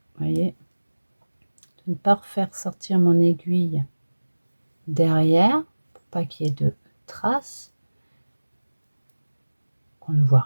voyez, de ne pas faire sortir mon aiguille derrière pour pas qu'il y ait de traces, qu'on ne voit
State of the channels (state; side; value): inverted; both; correlation -1.00